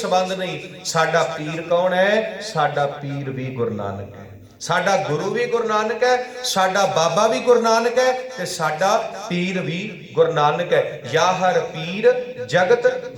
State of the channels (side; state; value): both; identical; correlation 1.00